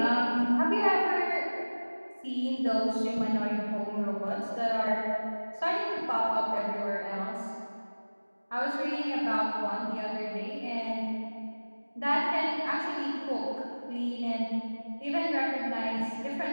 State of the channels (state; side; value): inverted; both; correlation -1.00